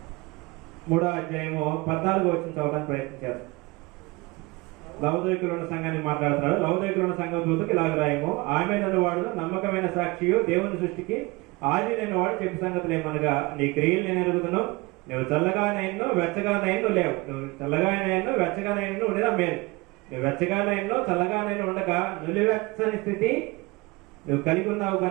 3వ అధ్యాయము 14వ వచనం చదవడానికి ప్రయత్నించారు. లవోదికీయులో ఉన్న సంఘాన్ని మాట్లాడుతున్నాడు. లవోదికీయులో ఉన్న సంఘం దూతకు ఇలాగ రాయము, ఆమె వాడు నమ్మకమైన సాక్షియు, దేవుని సృష్టికి ఆదినైన వాడు చెప్పు సంగతులు ఏమనగా, నీ క్రియలు నేను ఎరుగుదును, నువ్వు చల్లగానైనను వెచ్చగానైనను లేవు, నువ్వు చల్లగానైనను వెచ్చగానైనను ఉండేదా మేలు, నువ్వు వెచ్చగానైనను చల్లగానైనా ఉండగా నులివెచ్చని స్థితి నువ్వు కలిగి ఉన్నావు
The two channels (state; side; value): quieter; left; 23.9 dB